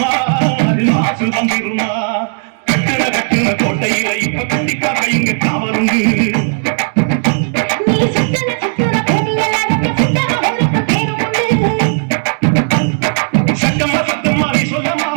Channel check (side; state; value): left; silent; digital silence